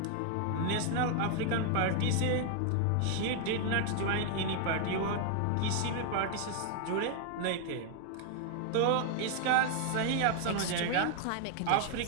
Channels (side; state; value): both; different; correlation 0.00